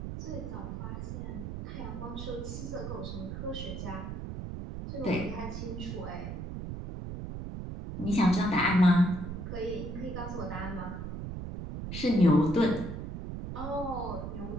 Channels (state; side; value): noise; right; rumble, 6 dB below the sound